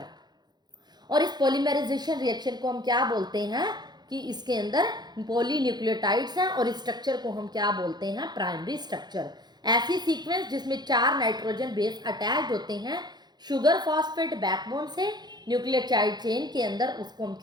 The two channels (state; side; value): late; left; 0.20 ms